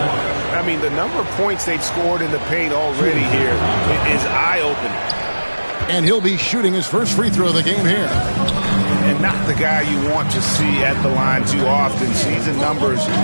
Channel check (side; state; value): both; inverted; correlation -1.00